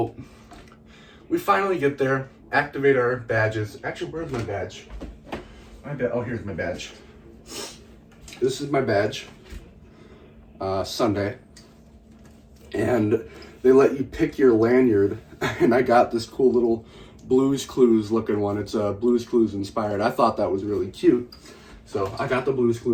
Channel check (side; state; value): both; identical; correlation 1.00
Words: we finally get there, activate our badges. Actually, where's my badge? Oh, here's my badge. This is my badge. Sunday. And they let you pick your lanyard. And I got this cool little Blue's Clues looking one. It's Blue's Clues inspired. I thought that was really cute. So I got the Blue's